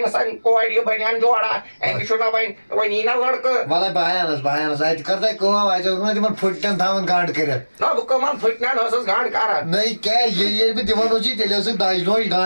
کورِ یہِ بنیان جوڑا أمِس چھُنہ وۄنۍ یی نہ لڑکہٕ وَلے بہٕ اَتہِ کر تۄہہِ کٲم اَتہِ اوس نہ تِمن پھٕٹن تھاوان گنٛڈ کٔرِتھ نہ بہٕ کٕمن پھٕٹنٮ۪ن ٲسٕس گنٛڈ کران نٔے کیٛاہ ییٚلہِ بہٕ دِوان اوسُے تیٚلہِ ٲسٕکھ دَجہِ لوج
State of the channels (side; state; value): both; inverted; correlation -1.00